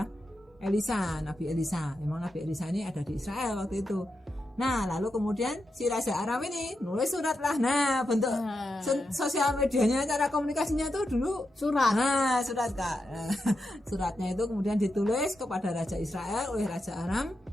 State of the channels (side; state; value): both; normal; correlation 0.87